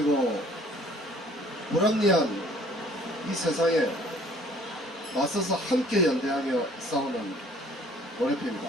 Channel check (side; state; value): both; normal; correlation 0.56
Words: 불합리한 이 세상에 맞서서 함께 연대하며 싸우는 노래표입니다.